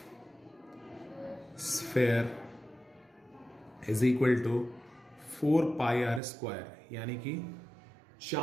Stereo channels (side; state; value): left; drops out; at 6.2 s